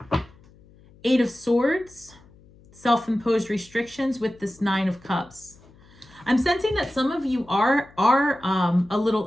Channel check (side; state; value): left; noise; hum, 26 dB below the sound